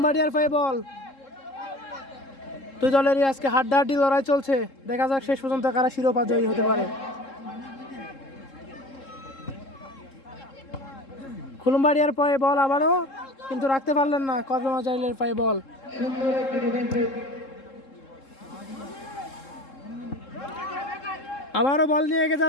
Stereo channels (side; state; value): right; late; 3.7 ms